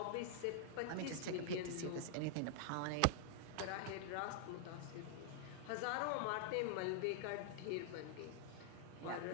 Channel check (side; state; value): both; different; correlation -0.01